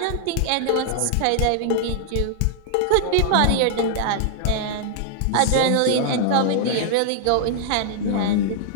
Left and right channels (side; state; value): both; different; correlation -0.01